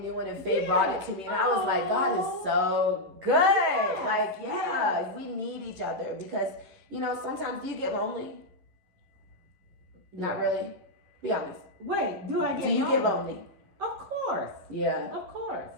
one, and Faye brought it to me, and I was like, God is so good. Yes. We need each other because sometimes you get lonely. Not really. Be honest. Wait, do I get lonely? Do you lonely? get lonely? Of course. Yeah. Of course.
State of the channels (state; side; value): late; left; 11 ms